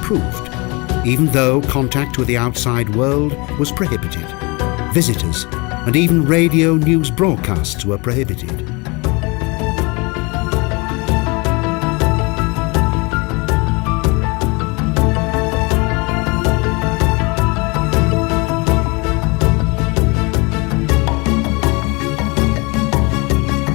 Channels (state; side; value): quieter; right; 27.6 dB